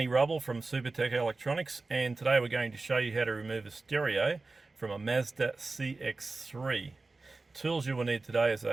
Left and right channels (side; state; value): left; quieter; 3.6 dB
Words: Rubble from Supertech Electronics, and today we're going to show you how to remove a stereo from a Mazda CX-3. Tools you will need today is